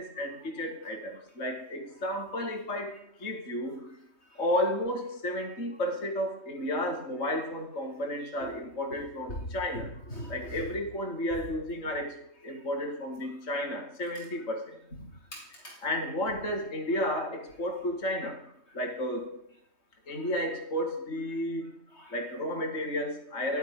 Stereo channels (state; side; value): late; right; 3.2 ms